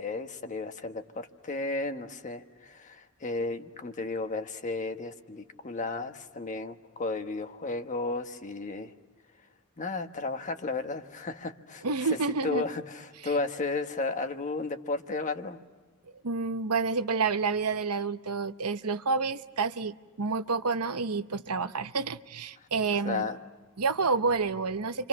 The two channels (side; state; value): both; normal; correlation -0.16